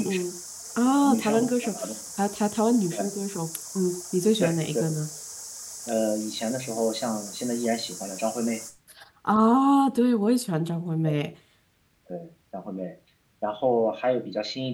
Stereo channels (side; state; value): both; identical; correlation 1.00